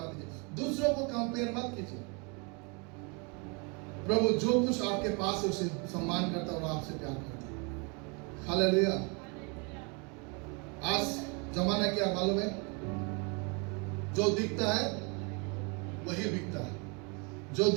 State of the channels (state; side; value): quieter; left; 32.3 dB